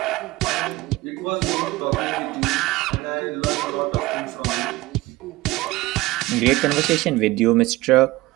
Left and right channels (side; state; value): left; quieter; 19.1 dB